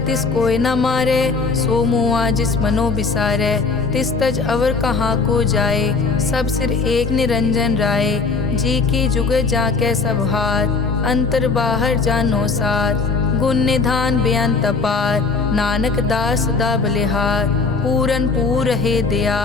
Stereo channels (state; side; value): quieter; right; 4.4 dB